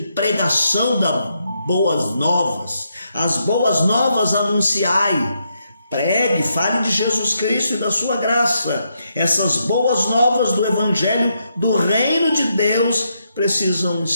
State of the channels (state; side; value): inverted; both; correlation -0.80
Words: das boas novas. As boas novas anunciai. Pregue, fale de Jesus Cristo e da sua graça. Essas boas novas do evangelho do reino de Deus precisam